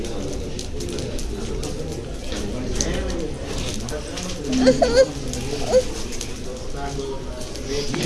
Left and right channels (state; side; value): identical; both; correlation 1.00